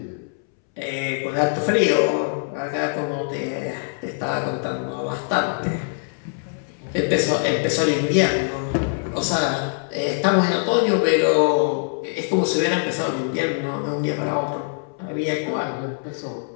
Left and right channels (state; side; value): silent; right; 63 dB below the other